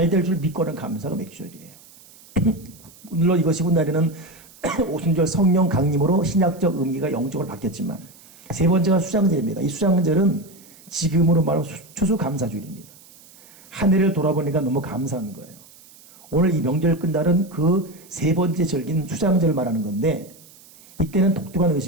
될 줄 믿고는 감사가 맥주절이에요. 물론 이것이 훗날에는 오순절 성령 강림으로 신약적 의미가 영적으로 바뀌었지만 세 번째가 수장절입니다. 이 수장절은 지금으로 말하면 추수감사주일입니다. 한 해를 돌아보니까 너무 감사한 거예요. 오늘 이 명절 끝날은 그 세 번째 절기는 수장절을 말하는 건데 이때는 독특한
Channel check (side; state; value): right; noise; hiss, 24 dB below the sound